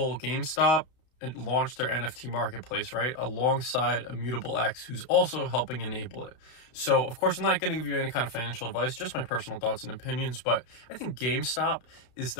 GameStop and launch their NFT marketplace, right? Alongside Immutable X, who's also helping enable it. So, of course, I'm not going to give you any kind of financial advice, just my personal thoughts and opinions, but I think GameStop is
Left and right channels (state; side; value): late; right; 32 ms